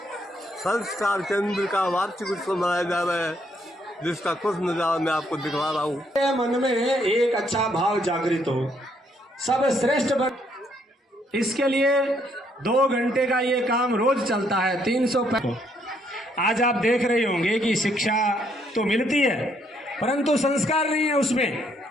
संस्कार केंद्र का वार्षिक उत्सव मनाया जा रहा है, जिसका कुछ नजारा मैं आपको दिखा रहा हूँ। मन में एक अच्छा भाव जागृत हो, सब श्रेष्ठ बन। इसके लिए 2 घंटे का ये काम रोज चलता है, 300। आज आप देख रहे होंगे कि शिक्षा तो मिलती है परंतु संस्कार नहीं है उसमें,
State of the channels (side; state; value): both; normal; correlation 0.71